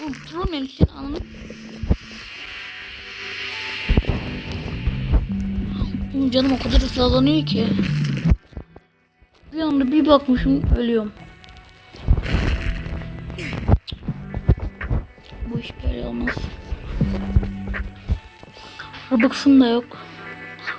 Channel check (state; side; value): identical; both; correlation 1.00